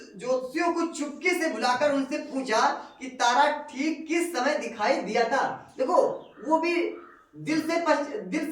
को चुपके से बुलाकर उनसे पूछा कि तारा ठीक किस समय दिखाई दिया था। देखो वो भी दिल से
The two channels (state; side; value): identical; both; correlation 1.00